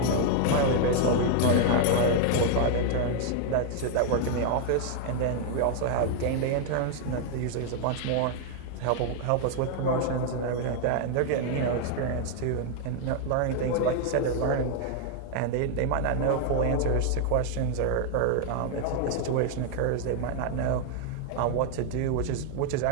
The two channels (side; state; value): both; different; correlation 0.00